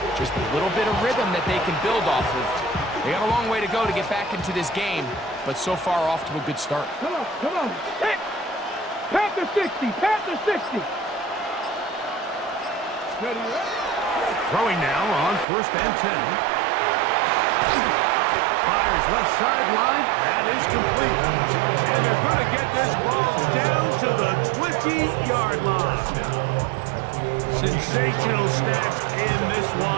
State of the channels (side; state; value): left; drops out; at 15.5 s